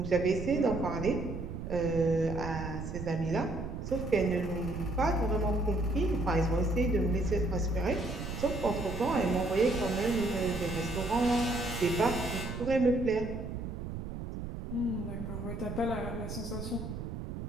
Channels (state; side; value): noise; right; rumble, 7 dB below the sound